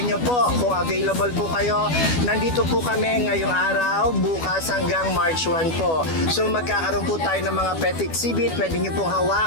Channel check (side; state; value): right; late; 12 ms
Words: po, kung available po kayo, nandito po kami ngayong araw, bukas hanggang March 1 po. So magkakaroon po tayo ng mga pet exhibit. Pwede nyo pong